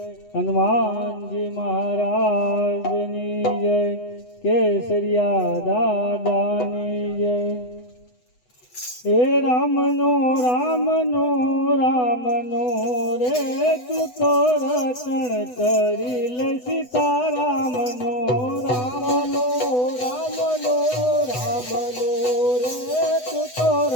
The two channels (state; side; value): late; right; 8.0 ms